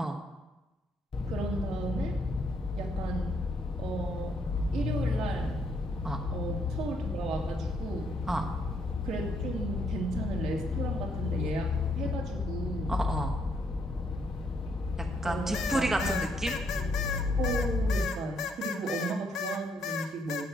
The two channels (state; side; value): normal; both; correlation 0.72